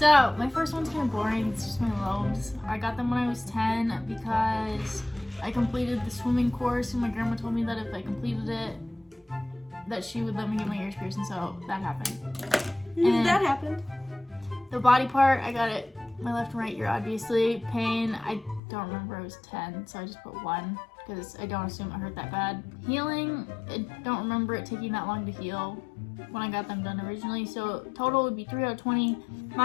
my first one's kind of boring. It's just my lobes. I got them when I was 10 because I completed the swimming course, and my grandma told me that if I completed it, that she would let me get my ears pierced, and so that happened. And that happened. the body part, I got it my left and right ear, obviously. Pain, I don't remember. I was 10, so I just put 1 because I don't assume it hurt that bad. Healing, I don't remember it taking that long to heal when I got them done originally, so total would be 3 out of 20.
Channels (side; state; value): right; drops out; at 18.6 s